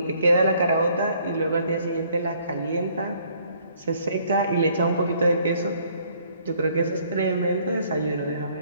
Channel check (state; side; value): inverted; both; correlation -0.63